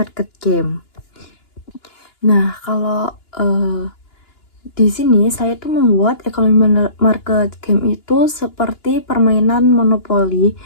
game. Nah, kalau di sini saya tuh membuat ekonomi market game itu seperti permainan monopoli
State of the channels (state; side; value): late; right; 2.9 ms